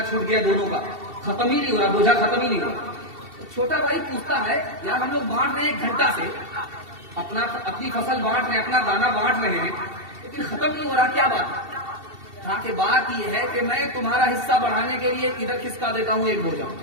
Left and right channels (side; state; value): left; late; 2.7 ms